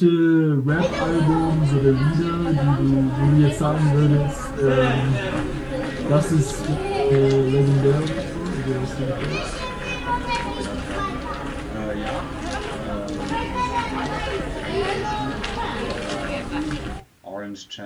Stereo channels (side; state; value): both; identical; correlation 1.00